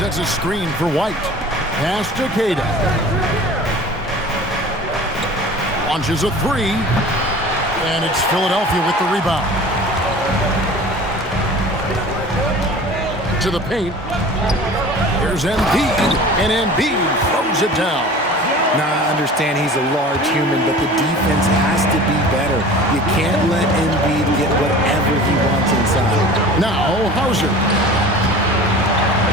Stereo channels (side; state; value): both; normal; correlation 0.41